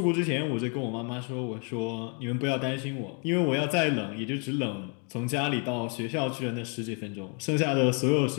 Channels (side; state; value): right; quieter; 36.9 dB